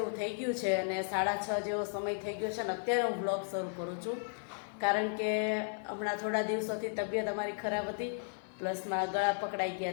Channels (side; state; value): right; silent; 55 dB below the other